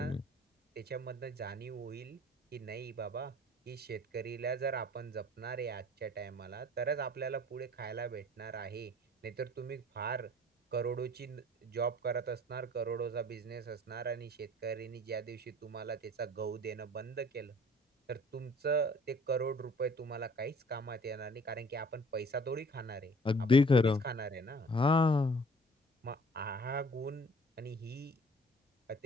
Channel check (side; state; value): both; normal; correlation 0.53